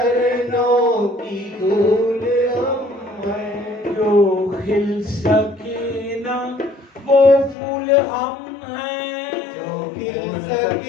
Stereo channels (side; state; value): right; drops out; at 7.6 s